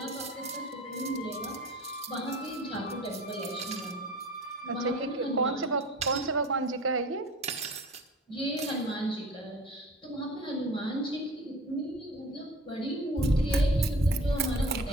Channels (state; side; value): normal; both; correlation 0.41